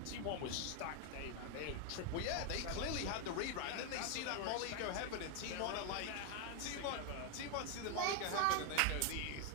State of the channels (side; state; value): both; different; correlation 0.00